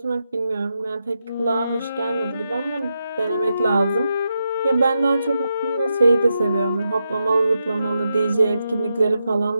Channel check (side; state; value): both; inverted; correlation -0.86